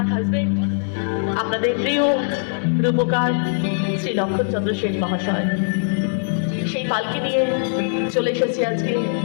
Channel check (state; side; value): silent; right; digital silence